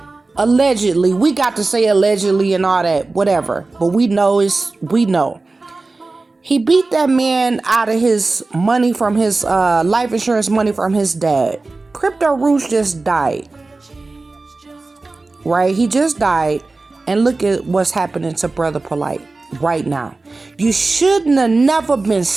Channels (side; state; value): left; quieter; 3.5 dB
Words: allegedly, we got to say allegedly and all that, whatever. But we know. He beat that man out of his money from his life insurance money from his dad. Crypto Roots just died. Right? He just died. And look at what's happening to Brother Polite right now. You shouldn't have never been